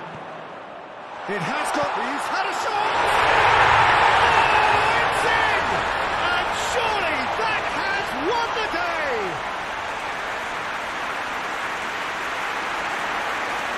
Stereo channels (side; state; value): both; identical; correlation 1.00